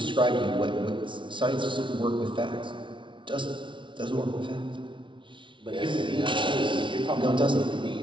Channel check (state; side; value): late; left; 0.24 ms